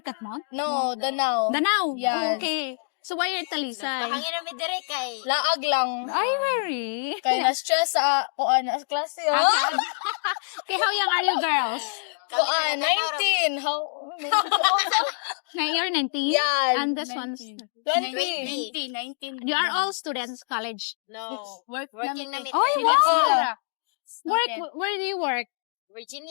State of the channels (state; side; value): silent; right; digital silence